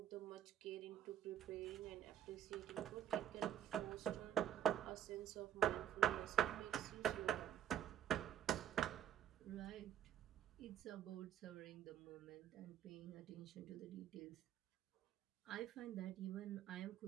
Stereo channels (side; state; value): left; quieter; 10.2 dB